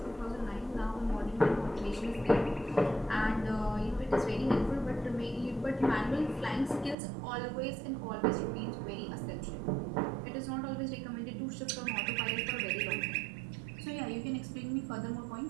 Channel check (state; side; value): drops out; left; at 7.0 s